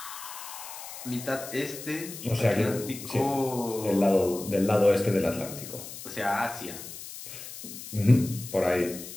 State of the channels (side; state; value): left; noise; hiss, 12 dB below the sound